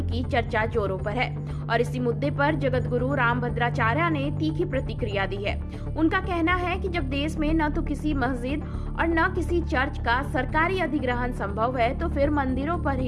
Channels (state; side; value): identical; both; correlation 1.00